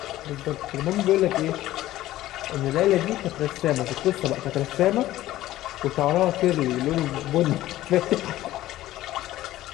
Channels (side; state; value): right; quieter; 15.1 dB